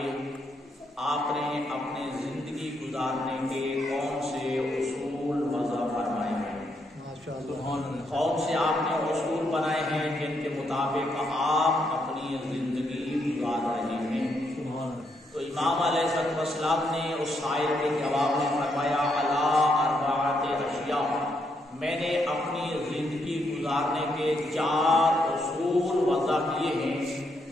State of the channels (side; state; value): both; normal; correlation 0.77